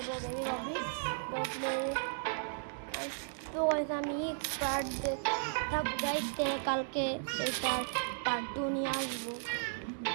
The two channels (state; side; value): silent; left; digital silence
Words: বেবি ববি তো প্লে। তো গাইস আমি এক্সপার্ট থাক গাইস, কালকে এটার পার্ট 2 নিয়ে আসবো।